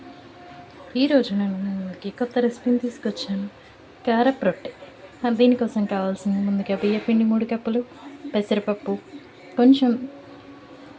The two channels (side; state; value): both; identical; correlation 1.00